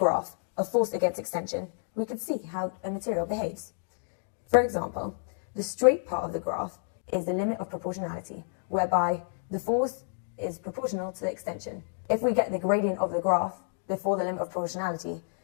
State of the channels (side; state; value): right; silent; digital silence